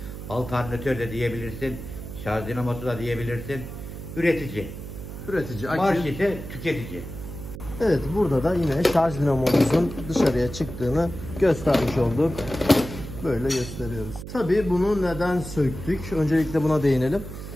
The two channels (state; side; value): noise; right; hum, 10 dB below the sound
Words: alternatör de diyebilirsin. Şarj dinamosu da diyebilirsin. Üretici. Üretici. Marş ise tüketici. Evet, burada da yine şarj dinamomuzun dışarıya çıktığını göstermiş olduk. Böyle gösteriyoruz. Tabii bunu neden söktük? Öncelikle buna değinelim.